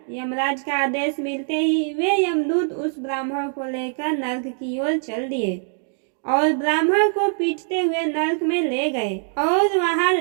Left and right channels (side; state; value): left; silent; 64 dB below the other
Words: यमराज का आदेश मिलते ही वे यमदूत उस ब्राह्मण को लेकर नरक की ओर चल दिए और ब्राह्मण को पीटते हुए नरक में ले गए और वहां